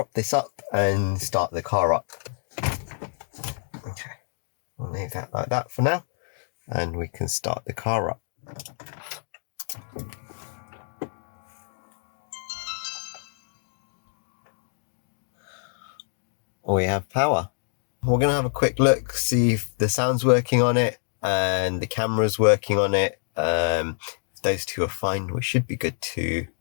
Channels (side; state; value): right; silent; digital silence